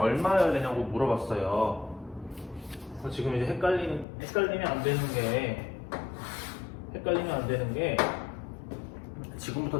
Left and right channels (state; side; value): drops out; right; at 4.0 s